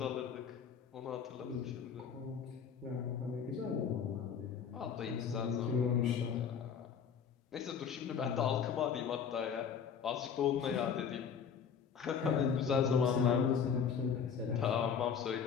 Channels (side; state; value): right; quieter; 7.0 dB